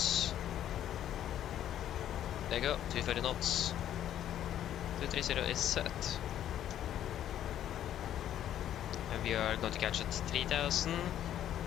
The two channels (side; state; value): right; quieter; 11.1 dB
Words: There you go, 230 knots. 230 is set. And we are going to catch at 3000,